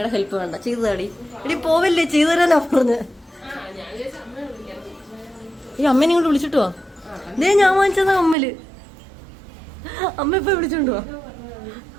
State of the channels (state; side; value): drops out; left; at 8.3 s